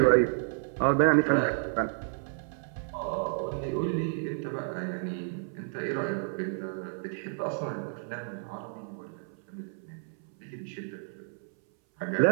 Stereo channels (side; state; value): left; silent; 57 dB below the other